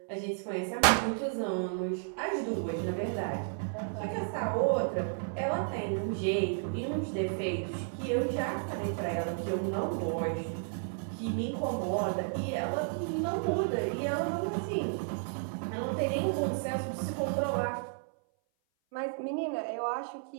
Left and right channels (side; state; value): left; silent; 56 dB below the other